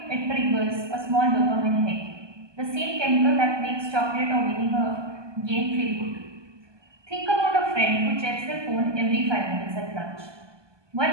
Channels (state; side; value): late; left; 1.2 ms